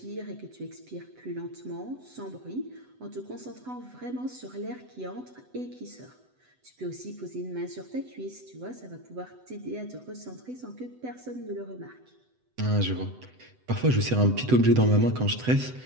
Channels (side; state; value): left; late; 7.9 ms